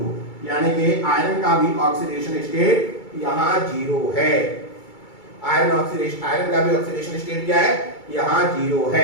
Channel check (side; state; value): right; late; 2.3 ms